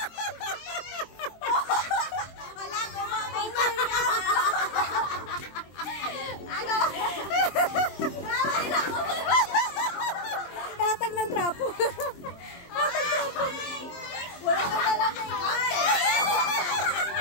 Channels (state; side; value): late; right; 23 ms